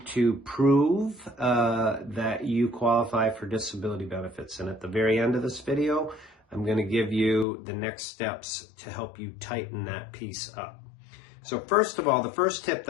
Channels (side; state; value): right; drops out; at 7.5 s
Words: to prove that you qualify for disability benefits. And at the very end of this video, I'm going to give you the next steps to help you tighten that piece up. So first of all, the first tip